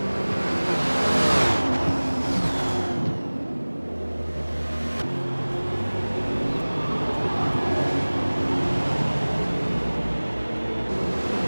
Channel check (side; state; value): both; inverted; correlation -1.00